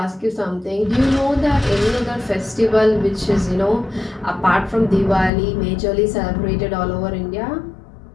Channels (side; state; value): right; drops out; at 5.3 s